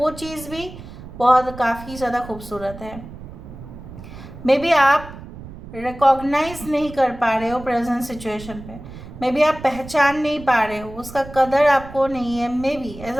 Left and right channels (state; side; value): noise; right; rumble, 14 dB below the sound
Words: चीज़ भी बहुत काफ़ी ज़्यादा खूबसूरत है। मे बी आप रिकॉग्नाइज नहीं कर पा रहे हो प्रेजेंट सिचुएशन पे, मे बी आप पहचान नहीं पा रहे हो, उसका कदर आपको नहीं है। मे बी